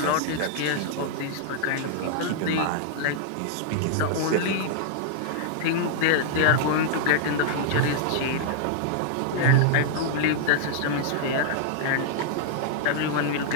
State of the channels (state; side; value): different; both; correlation -0.01